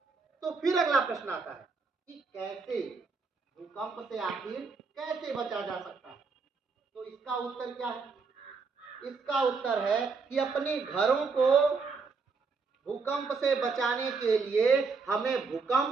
तो फिर अगला प्रश्न आता है कि कैसे, भूकंप से आखिर कैसे बचा जा सकता है। तो इसका उत्तर क्या है? इसका उत्तर है कि अपने घरों को भूकंप से बचाने के लिए हमें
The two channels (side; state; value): left; quieter; 4.7 dB